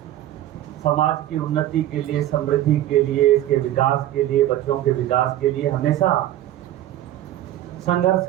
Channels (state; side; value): quieter; left; 13.3 dB